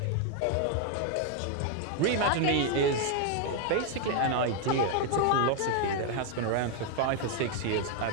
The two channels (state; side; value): different; both; correlation 0.01